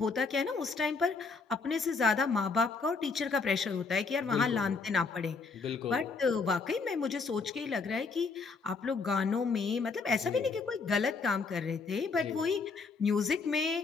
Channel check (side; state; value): right; quieter; 4.6 dB